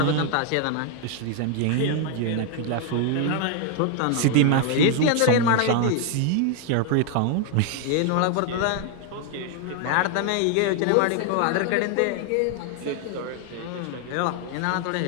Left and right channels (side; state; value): both; different; correlation 0.00